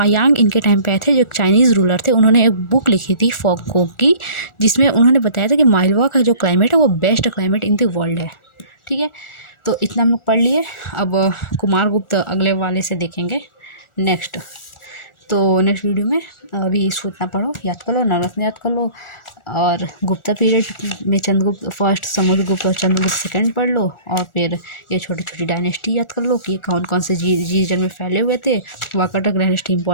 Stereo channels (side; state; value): right; late; 1.4 ms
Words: इनके टाइम पे आए थे, जो एक चाइनीज़ रूलर थे। उन्होंने एक बुक लिखी थी फॉगकोक की, जिसमें उन्होंने बताया था कि मालवा का जो क्लाइमेट है वो best climate in the world है। ठीक है, तो इतना हम लोग पढ़ लिए। अब कुमारगुप्त अगले वाले से देखेंगे नेक्स्ट। तो नेक्स्ट वीडियो में अभी इसको इतना पढ़ो, याद कर लो, नवरत्न याद कर लो, और गुप्ता पीरियड में चंद्रगुप्त फर्स्ट, समुद्रगुप्त और चंद्रगुप्त सेकंड पढ़ लो, और फिर ये छोटी छोटी डायनेस्टी याद कर लो कि कौन कौन से रीजन में फैले हुए थे। वाकाटक डायनेस्टी